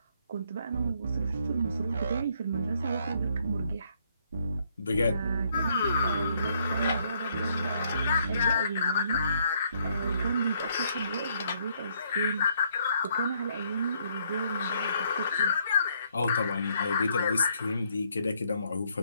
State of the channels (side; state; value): both; inverted; correlation -0.70